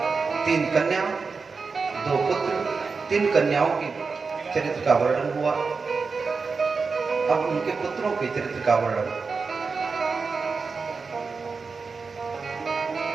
3 कन्या, 2 पुत्र, 3 कन्याओं के चरित्र का वर्णन हुआ। अब उनके पुत्रों के चरित्र का वर्णन।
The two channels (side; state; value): left; quieter; 4.7 dB